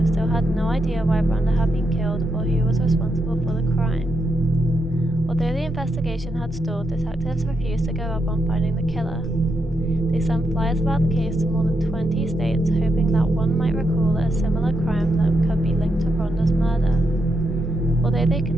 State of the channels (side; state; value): both; normal; correlation 0.82